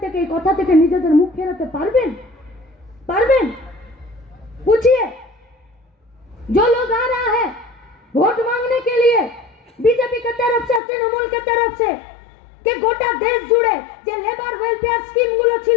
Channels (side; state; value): right; drops out; at 10.8 s